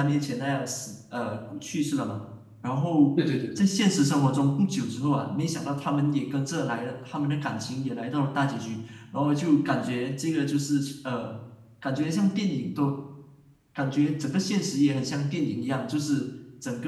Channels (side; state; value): both; identical; correlation 1.00